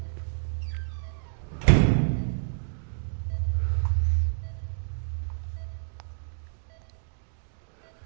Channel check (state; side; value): silent; left; 59 dB below the other